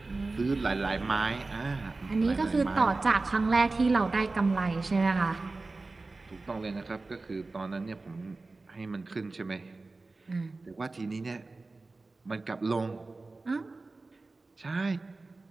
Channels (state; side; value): quieter; left; 3.5 dB